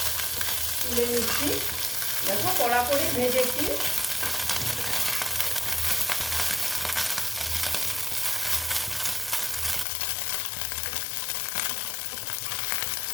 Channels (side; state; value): right; drops out; at 9.9 s